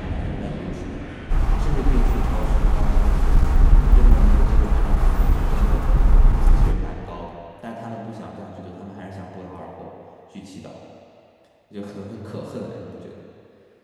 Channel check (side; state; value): both; identical; correlation 1.00